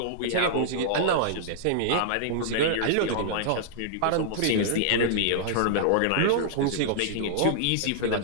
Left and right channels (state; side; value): different; both; correlation -0.02